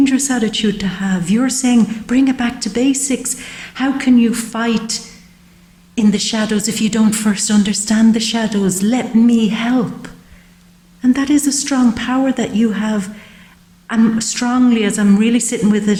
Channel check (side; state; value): both; identical; correlation 1.00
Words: attitude to have. You're saying, bring it back to basics. How can you fight in the shadows if you don't first understand the shadows? Let me help. And that is a strong power that you have. And strongly, as I'm really sitting with